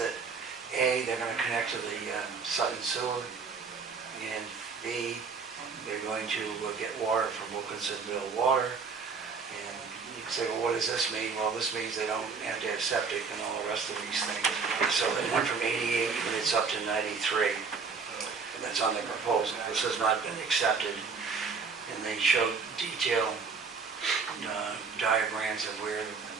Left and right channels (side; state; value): left; quieter; 5.1 dB